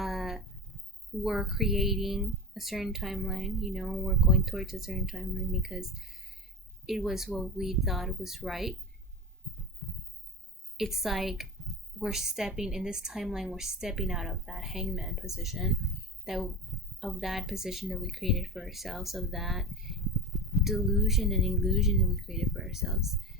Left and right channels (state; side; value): normal; both; correlation 0.26